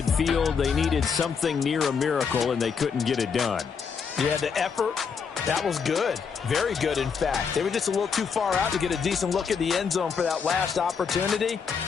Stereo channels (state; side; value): quieter; right; 6.1 dB